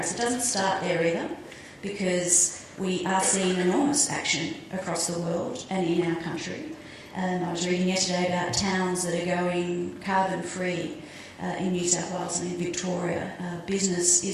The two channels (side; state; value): both; identical; correlation 1.00